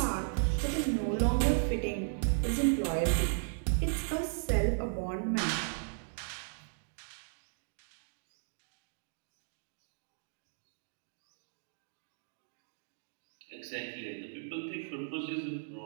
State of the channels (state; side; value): silent; left; digital silence